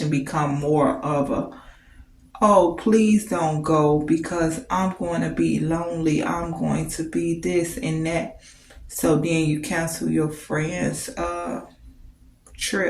become more of a, oh, please don't go because I'm going to be lonely. I'm going to be this and that. So then you cancel your friend's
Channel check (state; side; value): identical; both; correlation 1.00